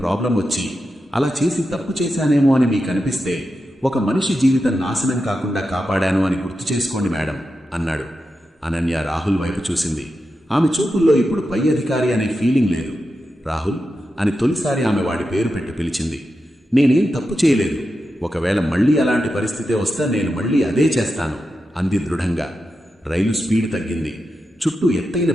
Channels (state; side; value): normal; both; correlation 0.89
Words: వచ్చి అలా చేసి తప్పు చేశానేమో అని మీకు అనిపిస్తే ఒక మనిషి జీవితం నాశనం కాకుండా కాపాడాను అని గుర్తు చేసుకోండి మేడం అన్నాడు. అనన్య రాహుల్ వైపు చూసింది. ఆమె చూపుల్లో ఇప్పుడు పై అధికారి అనే ఫీలింగ్ లేదు. రాహుల్ అని తొలిసారి ఆమె వాడి పేరు పెట్టి పిలిచింది. నేనేం తప్పు చేయలేదు. ఒకవేళ మళ్లీ అలాంటి పరిస్థితే వస్తే నేను మళ్లీ అదే చేస్తాను అంది దృఢంగా. రైలు స్పీడ్ తగ్గింది. చుట్టూ ఎత్తైన